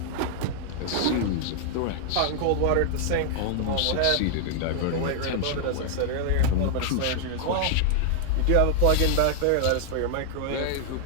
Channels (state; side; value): different; both; correlation -0.01